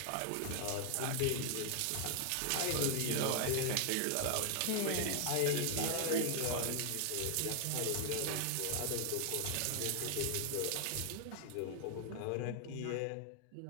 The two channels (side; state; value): both; different; correlation 0.00